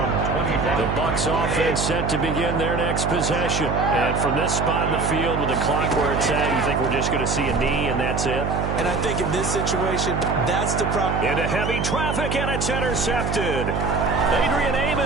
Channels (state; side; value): noise; right; hum, 2 dB below the sound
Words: 25. The Bucs offense set to begin their next possession. And from this spot in the field with the clock where it's at, you think we're just going to see a knee and that's it? And I think in this situation, that's the problem. Into heavy traffic, and it's intercepted. Adrian